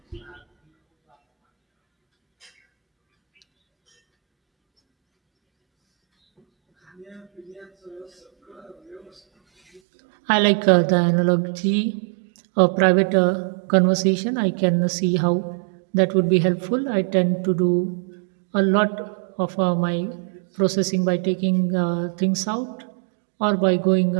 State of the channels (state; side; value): drops out; left; at 9.8 s